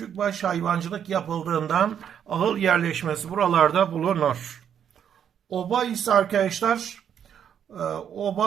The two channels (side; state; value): left; quieter; 8.7 dB